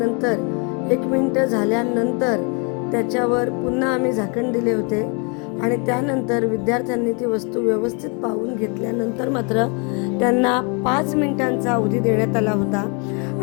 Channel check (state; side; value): quieter; right; 34.8 dB